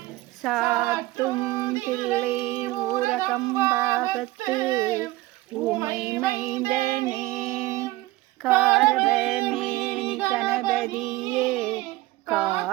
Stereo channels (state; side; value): quieter; left; 18.7 dB